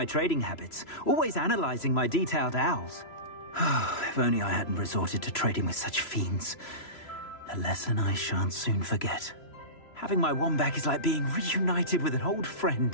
trading habits, always analyzing my detailed owls. If only I hadn't resorted to trading with such fiends. A lesson I shan't soon forget. Having my wand back is like being reunited with an old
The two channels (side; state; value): right; late; 3.0 ms